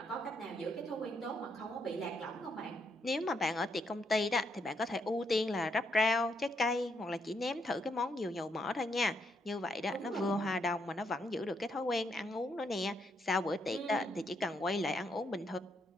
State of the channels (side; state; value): both; normal; correlation 0.76